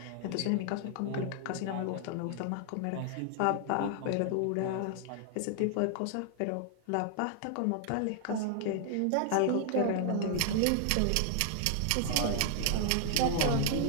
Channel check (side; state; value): both; different; correlation 0.00